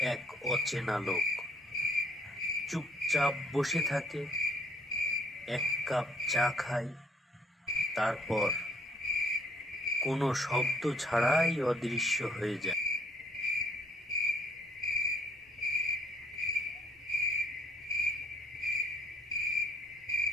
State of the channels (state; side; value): normal; both; correlation 0.63